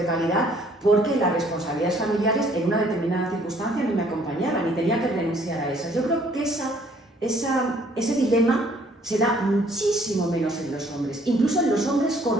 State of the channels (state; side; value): normal; both; correlation 0.61